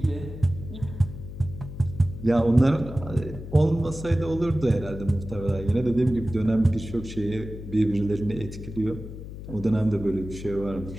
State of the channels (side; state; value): left; noise; hum, 11 dB below the sound